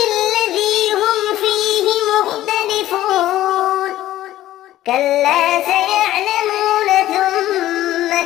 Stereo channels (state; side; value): quieter; right; 14.2 dB